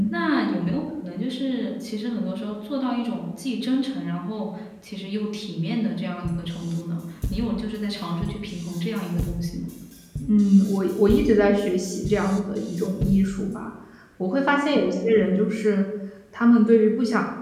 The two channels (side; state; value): both; identical; correlation 1.00